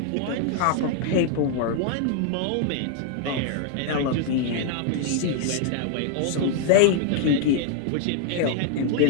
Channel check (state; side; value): different; both; correlation 0.00